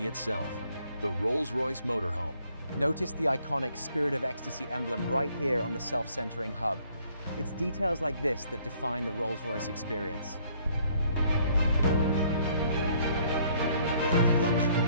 itself. The Rolls-Royce Motorhome. Notice the iconic Spirit of Ecstasy emblem right here on the self-centering hub. It's details like this that define the Rolls-Royce experience. What if luxury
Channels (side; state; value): both; inverted; correlation -0.64